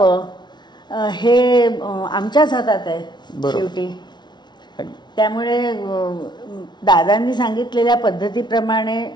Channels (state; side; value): late; right; 0.21 ms